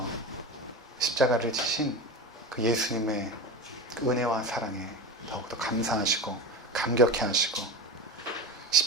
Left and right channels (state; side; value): normal; both; correlation 0.27